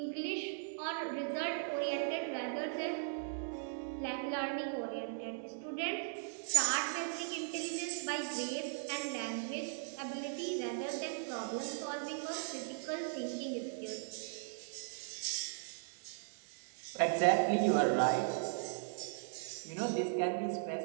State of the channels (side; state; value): left; silent; digital silence